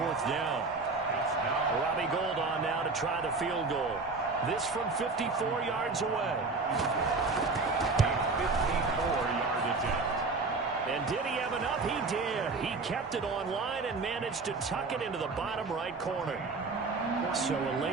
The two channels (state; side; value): quieter; left; 3.9 dB